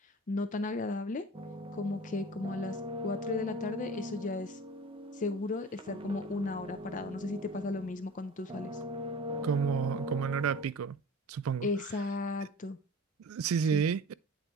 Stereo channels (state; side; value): normal; both; correlation 0.39